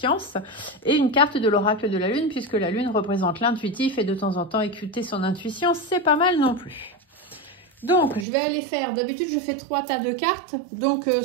et une carte de l'oracle de la lune, puisque la lune représente l'intuitif et de temps en temps écouter son intuition, c'est pas mal non plus. Donc, je vais aller faire, d'habitude je fais 3 tas de cartes, donc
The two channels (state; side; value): drops out; left; at 8.2 s